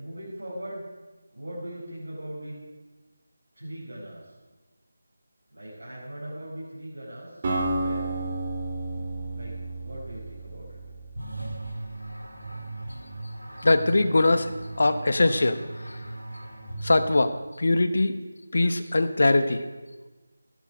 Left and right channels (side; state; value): both; inverted; correlation -0.96